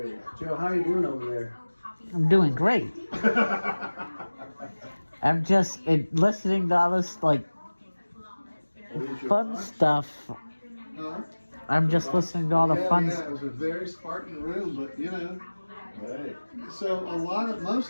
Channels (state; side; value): inverted; both; correlation -1.00